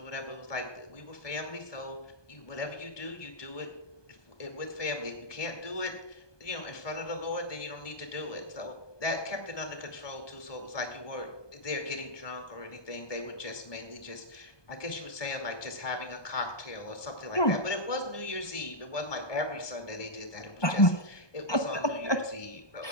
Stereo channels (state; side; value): late; right; 1.2 ms